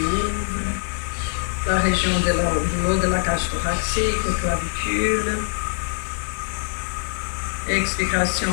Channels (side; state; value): right; silent; digital silence